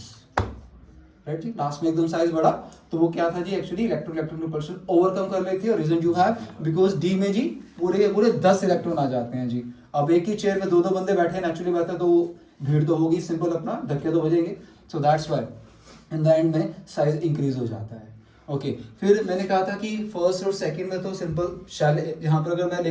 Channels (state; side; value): identical; both; correlation 1.00